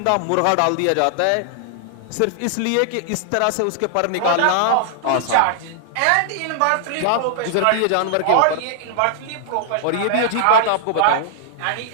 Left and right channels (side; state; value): both; different; correlation -0.01